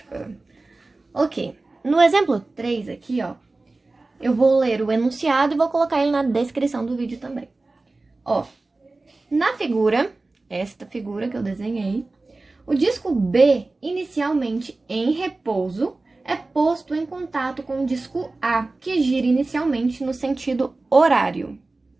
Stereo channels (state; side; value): quieter; left; 3.3 dB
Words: Ok, no exemplo 3 aqui, ó, eu vou ler o enunciado e vou colocar ele na descrição do vídeo também. Ó, na figura, esta figura que eu desenhei, o disco B, inicialmente em repouso, é posto em contato com o disco A, que gira inicialmente no sentido horário,